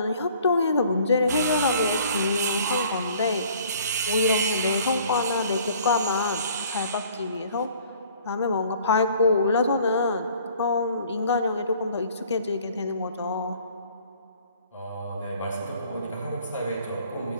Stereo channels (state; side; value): inverted; both; correlation -0.55